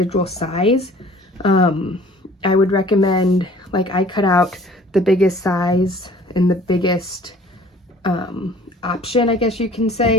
size, I would recommend, like, I cut out the biggest size and the biggest option, I guess you can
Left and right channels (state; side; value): normal; both; correlation 0.51